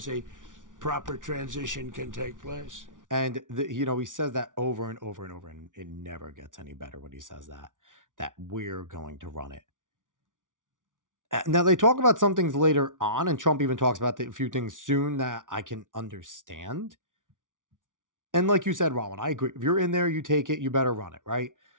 a proper transition can take place. And, he says that over and over and over, and it never gets any better when he says that we're going to run it. Now, they talk about some things later on, and Trump even talks about a few things soon that I can understand. And like you said, Rowan, I agree. If you're in there, you take it, you better run it, right?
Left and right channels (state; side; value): late; left; 0.88 ms